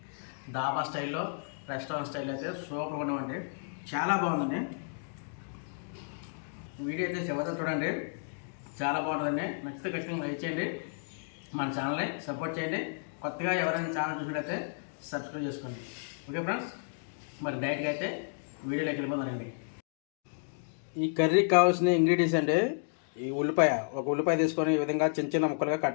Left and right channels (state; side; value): silent; right; digital silence